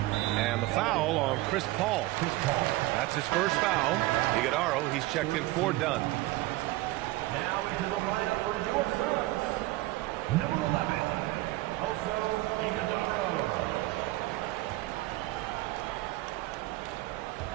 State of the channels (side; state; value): left; quieter; 18.6 dB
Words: And the foul on Chris Paul. That's his first foul. Iguodaro, he's checked in for Dunn. Now into the lineup for your Suns. Number 11, also Iguodaro.